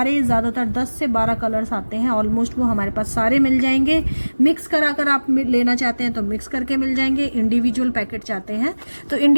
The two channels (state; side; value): inverted; both; correlation -1.00